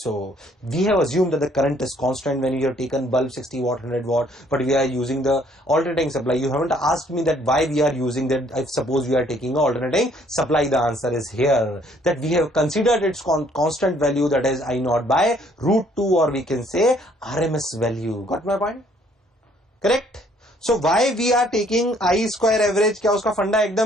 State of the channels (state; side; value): normal; both; correlation 0.63